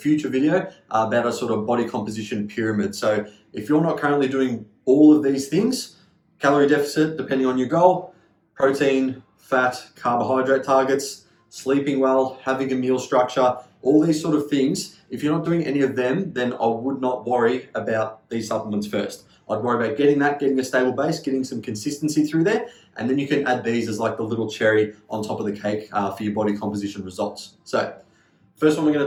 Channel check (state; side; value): identical; both; correlation 1.00